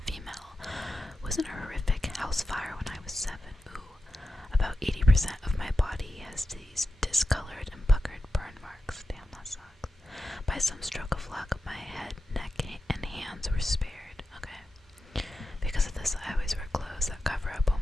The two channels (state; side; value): normal; both; correlation 0.92